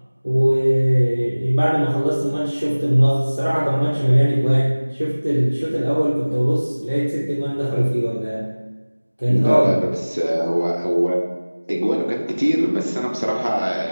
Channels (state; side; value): inverted; both; correlation -1.00